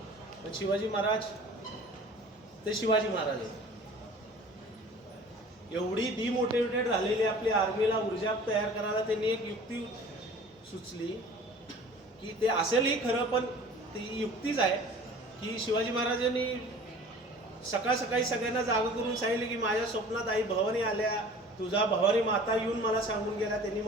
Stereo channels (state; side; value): normal; both; correlation 0.45